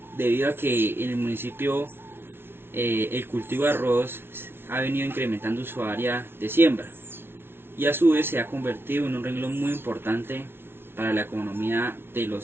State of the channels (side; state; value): left; late; 0.11 ms